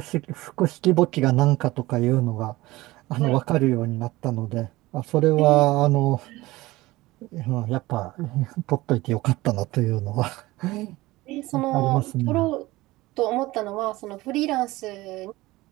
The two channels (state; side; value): quieter; left; 19.2 dB